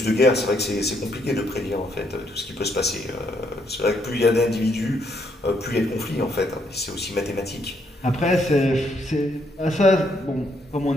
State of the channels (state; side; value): normal; both; correlation 0.73